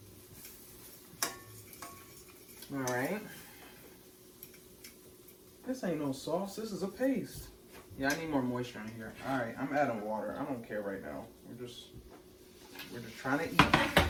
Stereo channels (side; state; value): both; identical; correlation 1.00